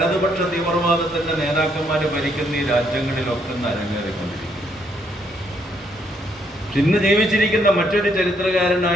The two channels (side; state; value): both; normal; correlation 0.72